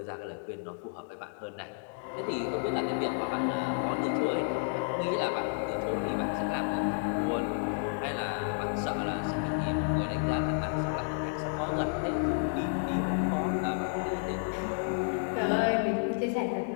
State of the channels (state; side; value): silent; right; digital silence